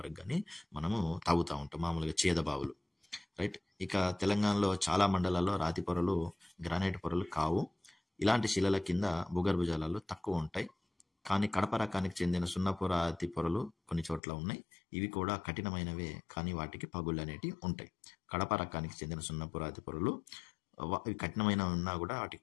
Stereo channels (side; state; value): right; drops out; at 14.2 s